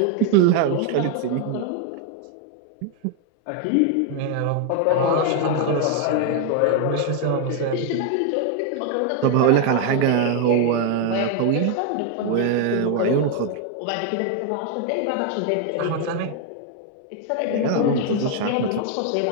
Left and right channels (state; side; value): different; both; correlation 0.00